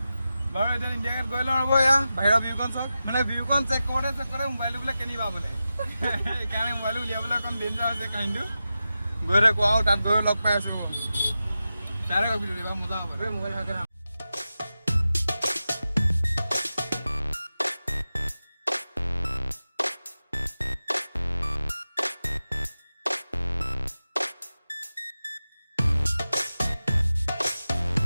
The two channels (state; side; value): inverted; both; correlation -0.93